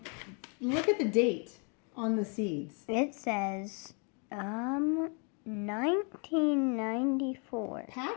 look at the date on the seeds. It says 1994.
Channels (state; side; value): quieter; right; 37.0 dB